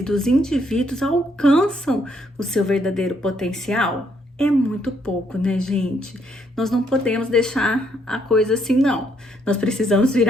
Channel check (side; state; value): both; normal; correlation 0.72